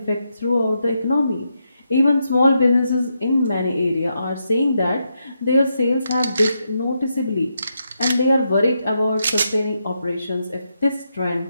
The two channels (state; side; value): inverted; both; correlation -0.83